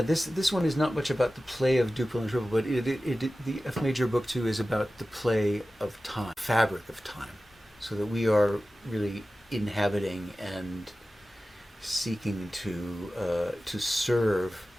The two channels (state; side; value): normal; both; correlation 0.95